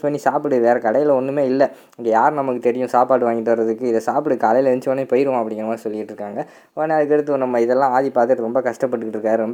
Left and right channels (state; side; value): identical; both; correlation 1.00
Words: பண்ணி சாப்பிடு, வேறு கடையில் ஒன்றுமே இல்லை, இங்கே யார் நமக்கு தெரியும் சாப்பாடு வாங்கிட்டு வர்றதுக்கு, இதை சாப்பிடு, காலையில் எழுந்தோடனே போயிடுவோம் அப்படிங்கிற மாதிரி சொல்லிட்டு இருக்காங்க. உடனே அதுக்கடுத்து நம்ம இதெல்லாம் ஆதி பார்த்துட்டு ரொம்ப கஷ்டப்பட்டுக்கிட்டு இருக்காரு,